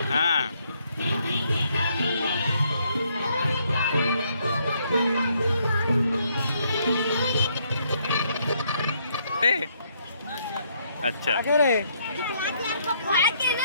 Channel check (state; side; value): inverted; both; correlation -0.71